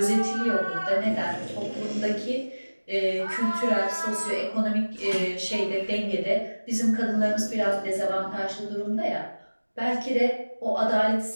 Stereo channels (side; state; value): both; inverted; correlation -1.00